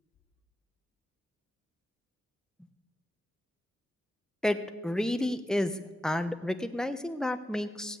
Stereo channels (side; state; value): both; normal; correlation 0.90